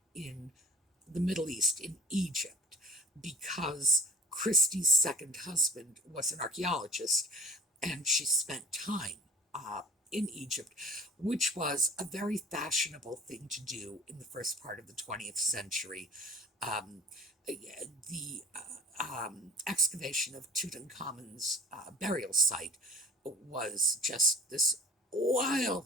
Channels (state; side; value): normal; both; correlation 0.45